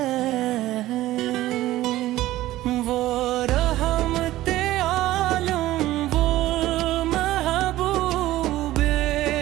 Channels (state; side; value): quieter; left; 15.7 dB